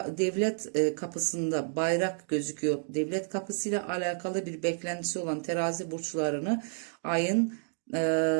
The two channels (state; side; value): silent; left; digital silence